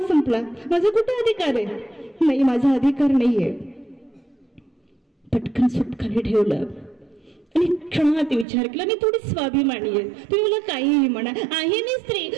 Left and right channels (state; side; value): drops out; left; at 8.5 s